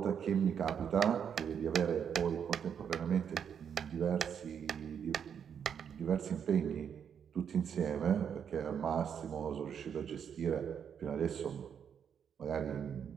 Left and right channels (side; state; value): left; quieter; 7.8 dB